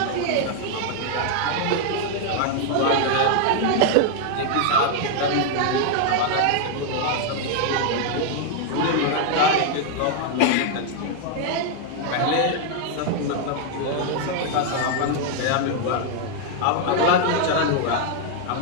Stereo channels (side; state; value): both; different; correlation 0.00